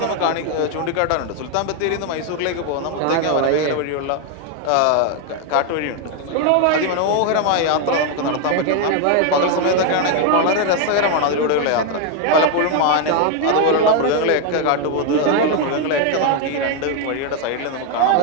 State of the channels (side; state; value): both; different; correlation 0.01